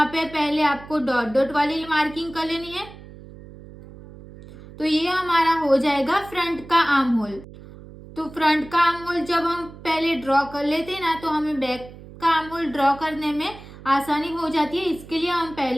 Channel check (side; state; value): right; noise; hum, 17 dB below the sound